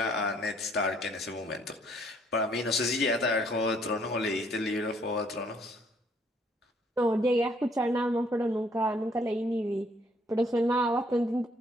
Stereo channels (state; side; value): normal; both; correlation 0.65